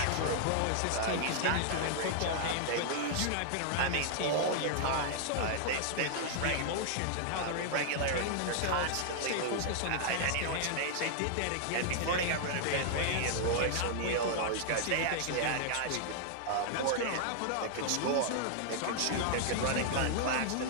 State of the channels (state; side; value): different; both; correlation -0.01